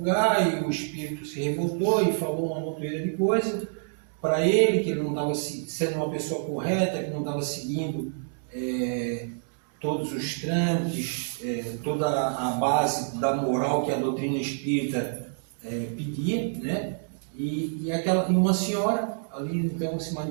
e o espírito se revoltou e falou uma montoeira de coisa, para ele, que ele não estava sendo uma pessoa correta, que não estava seguindo todos os trâmites, toda a base da moral que a doutrina espírita pedia, né? E uma senhora ali então se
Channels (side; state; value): left; silent; digital silence